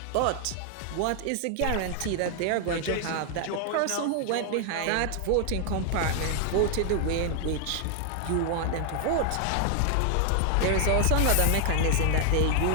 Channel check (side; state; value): both; different; correlation 0.00